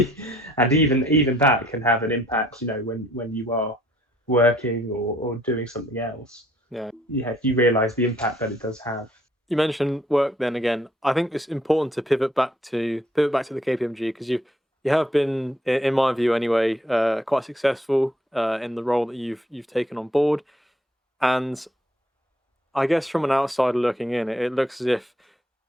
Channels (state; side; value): normal; both; correlation 0.65